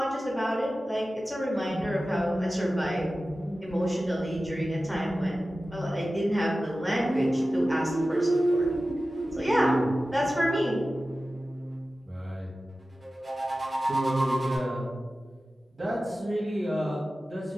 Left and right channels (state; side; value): normal; both; correlation 0.95